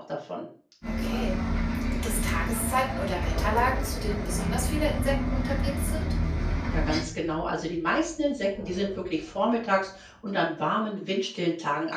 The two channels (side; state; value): both; identical; correlation 1.00